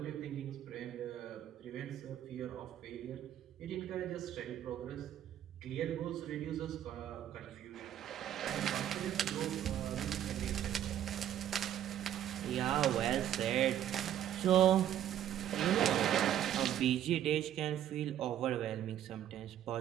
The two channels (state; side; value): quieter; left; 11.1 dB